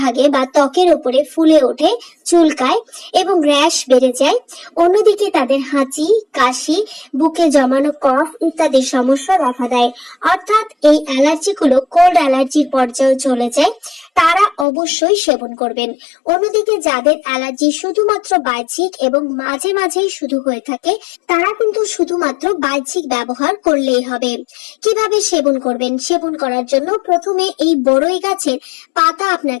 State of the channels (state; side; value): drops out; right; at 14.7 s